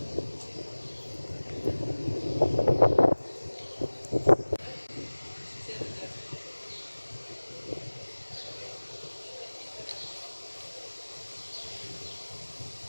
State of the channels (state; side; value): inverted; both; correlation -1.00